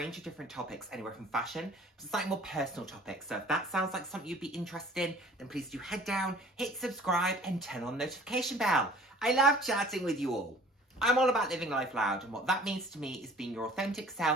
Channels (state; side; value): normal; both; correlation 0.49